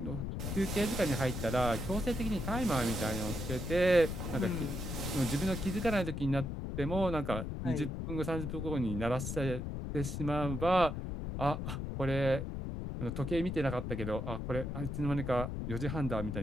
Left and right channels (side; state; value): left; noise; rumble, 4 dB below the sound